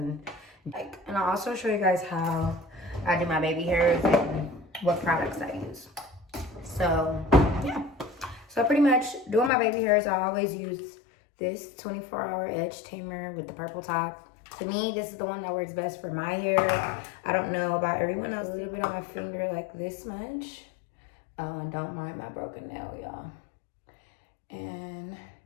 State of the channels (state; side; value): drops out; right; at 9.5 s